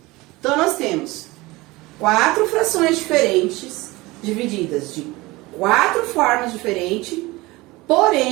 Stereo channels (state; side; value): quieter; left; 21.3 dB